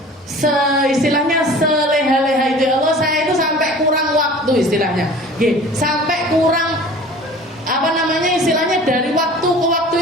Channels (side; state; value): both; normal; correlation 0.43